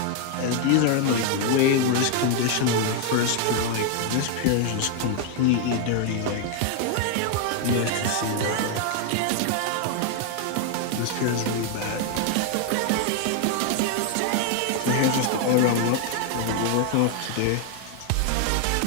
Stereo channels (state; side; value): different; both; correlation 0.00